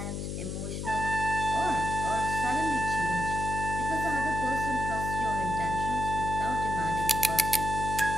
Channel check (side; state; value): left; noise; hum, 4 dB below the sound